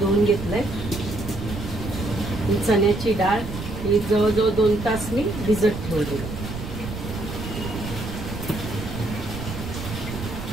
घेतलंय, चण्याची डाळ ही जवळजवळ 2 तास मी भिजत ठेवली।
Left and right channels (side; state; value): right; noise; rumble, 7 dB below the sound